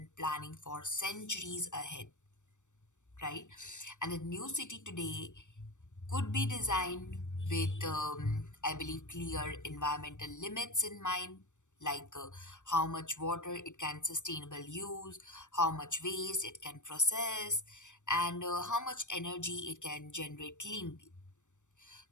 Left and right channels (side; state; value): right; late; 0.85 ms